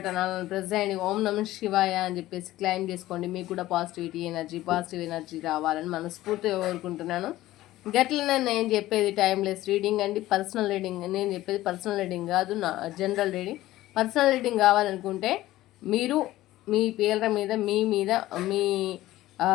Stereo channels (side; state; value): right; quieter; 15.9 dB